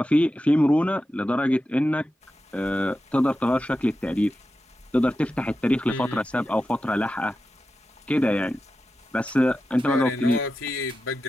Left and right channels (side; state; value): both; normal; correlation 0.91